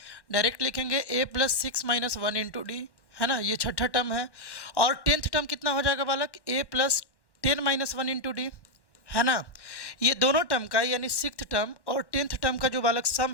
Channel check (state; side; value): late; right; 1.1 ms